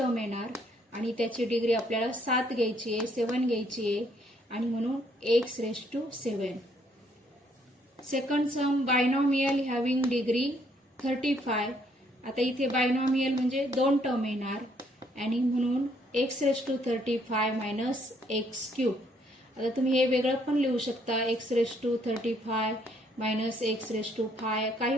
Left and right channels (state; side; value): normal; both; correlation 0.68